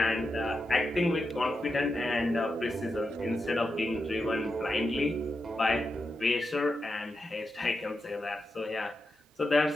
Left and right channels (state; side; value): normal; both; correlation 0.88